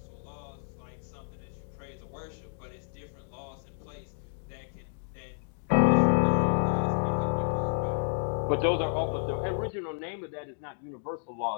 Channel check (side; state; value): right; silent; digital silence